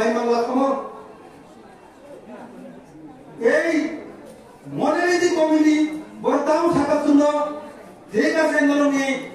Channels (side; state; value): both; identical; correlation 1.00